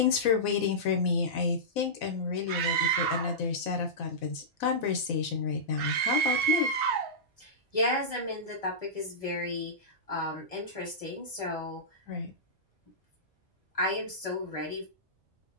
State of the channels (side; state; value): both; normal; correlation -0.15